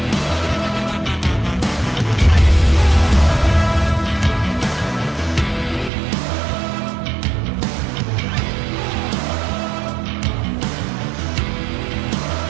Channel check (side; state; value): left; drops out; at 5.9 s